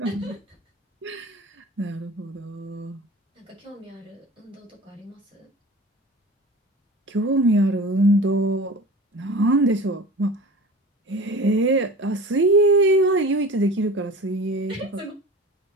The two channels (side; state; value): both; normal; correlation 0.37